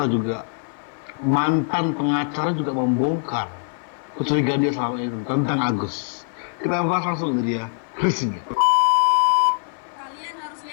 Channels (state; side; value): silent; right; 55 dB below the other